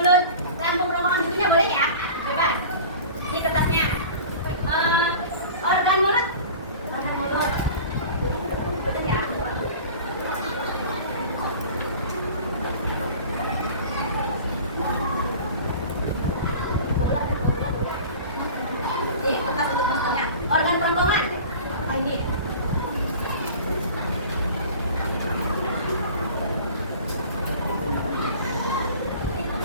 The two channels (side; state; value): both; inverted; correlation -0.40